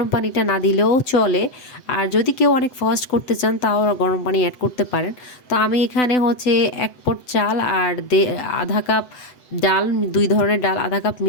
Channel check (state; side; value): late; right; 8.0 ms